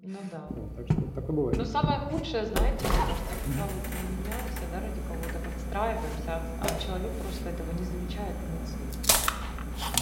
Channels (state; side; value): identical; both; correlation 1.00